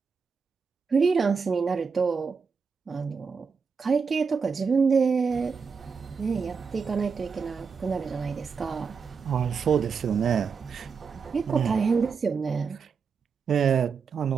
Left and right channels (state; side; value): quieter; left; 5.6 dB